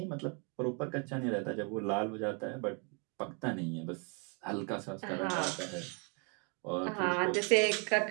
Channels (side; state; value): left; quieter; 36.6 dB